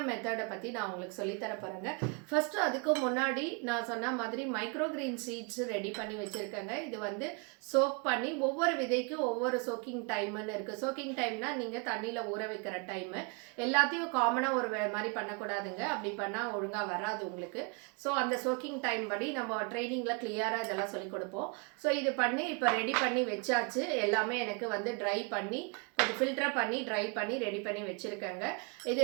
மெத்தடை பற்றி நான் உங்களுக்கு சொல்லித்தர போகிறேங்க. ஃபஸ்ட்டு அதுக்கு முன்னாடி நான் சொன்ன மாதிரி மைக்ரோகிரீன் சீட்ஸ் ரெடி பண்ணி வச்சுருக்கேங்க. இது வந்து சோக் பண்ணி ஒவ்வொரு விதைக்கும் ஒவ்வொரு சோக்கிங் டைம்னு இருக்குது. சோக்கிங் டைம்னா நீங்கள் தண்ணியில் ஊற வைக்கிற டைமு. எல்லாத்தையும் காமனாக ஒரு மாதிரி பண்ணக்கூடாதுங்க. அப்படி பண்ணால் ஒழுங்காக வராது உங்களுக்கு. ஸோ அந்த சோக்கிங் டைம் படி நம்ம ட்ரைனிங்கில் கிளியராக இதெல்லாம் சொல்லிக் கொடுப்போம். ஸோ இது பண்ணி இப்போ ரெடி பண்ணி வச்சாச்சு. எல்லாமே எனக்கு வந்து ட்ரை பண்ணி கொஞ்சம் ஃபில்டர் பண்ணி ட்ரை பண்ணி ரெடி பண்ணி வச்சுருக்கேங்க. இது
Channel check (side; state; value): left; quieter; 33.2 dB